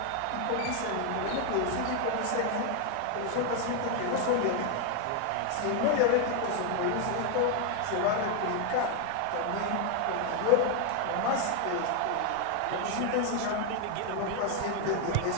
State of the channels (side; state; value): both; different; correlation 0.01